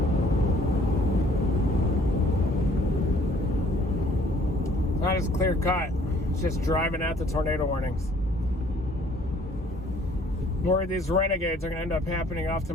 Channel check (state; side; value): normal; both; correlation 0.59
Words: Not as clear cut. It's just driving at the tornado warnings. worried these renegades are going to end up happening off to